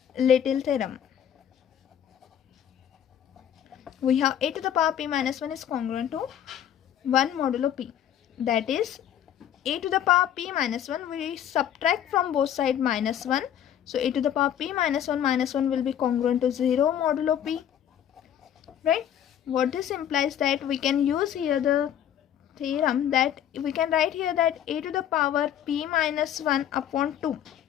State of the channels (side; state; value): right; quieter; 10.1 dB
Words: theorem, we have a to the power p minus 1 is congruent to 1 modulo p. That is, a to the power p minus 1, we subtract from both sides minus 1. So a to the power p minus 1 will be congruent to 0 modulo p. Right? What this implies that we can use here the theorem that we can write here that a to the power p minus 1 upon 2